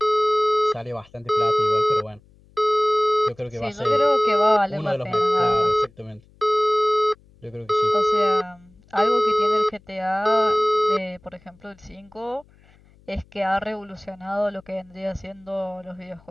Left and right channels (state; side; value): noise; left; hum, 29 dB below the sound